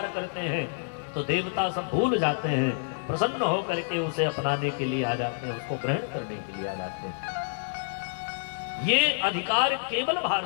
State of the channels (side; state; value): right; silent; 55 dB below the other